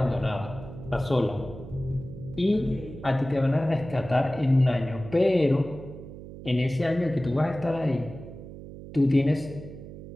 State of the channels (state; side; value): noise; right; hum, 13 dB below the sound